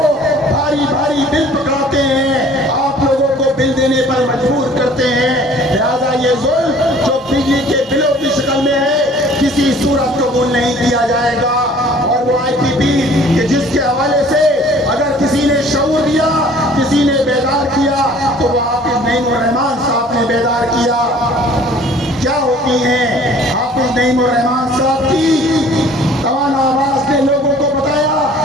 بھاری بھاری بل پکڑاتے ہیں، آپ لوگوں کو بل دینے پر مجبور کرتے ہیں. لہذا یہ ظلم جو بجلی کے بلوں کی شکل میں ہے کسی صورت قبول نہیں کیا جائے گا. اور وہ آئی پی پی کہ جس کے حوالے سے اگر کسی نے شعور دیا، کسی نے بیدار کیا، تو وہ حافظ نعیم الرحمان صاحب نے بیدار کیا. کیا ہوتی ہیں حافظ نعیم الرحمان صاحب کی توانا آواز نے لوگوں کو بتایا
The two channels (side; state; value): both; normal; correlation 0.52